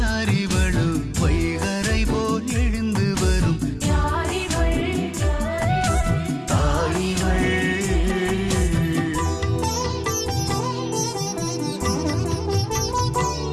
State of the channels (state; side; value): identical; both; correlation 1.00